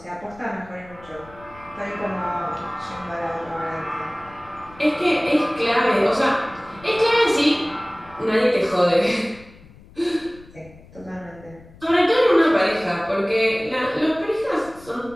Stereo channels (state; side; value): noise; left; rumble, 23 dB below the sound